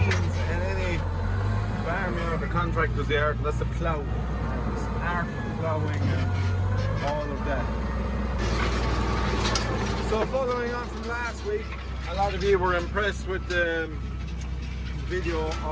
in any farmyard or contractor's yard, and that's the plough. This art of ploughing and all of that. So following on from last week, a lot of you were impressed with the video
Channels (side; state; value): both; identical; correlation 1.00